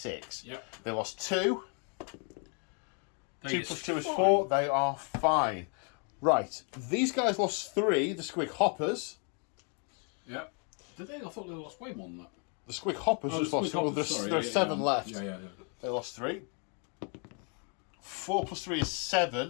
Yep. They lost 2. 2 plus 2 is 4. They are fine. Right, these guys lost 3, the Squig Hoppers. Yeah. Did they? I thought they lost way more than that. The Squig Hoppers just lost 4. There's 7 left. Yeah. They lost 3. 4 plus 3 is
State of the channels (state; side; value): quieter; right; 38.6 dB